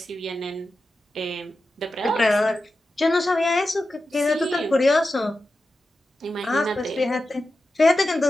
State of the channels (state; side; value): normal; both; correlation 0.92